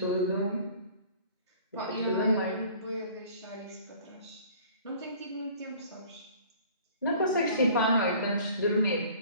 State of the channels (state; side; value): inverted; both; correlation -0.50